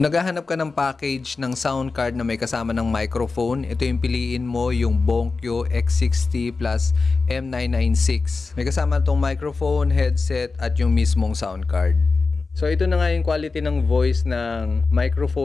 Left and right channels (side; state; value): right; quieter; 4.1 dB